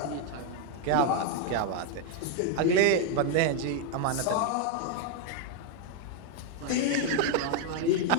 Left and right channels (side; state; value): both; different; correlation 0.01